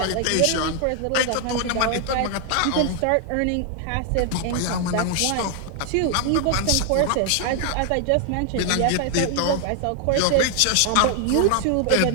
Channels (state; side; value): different; both; correlation 0.00